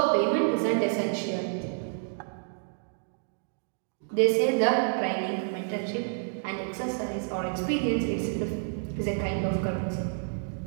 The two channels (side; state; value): left; silent; digital silence